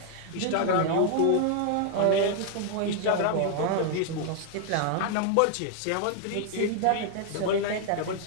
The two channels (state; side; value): different; both; correlation 0.00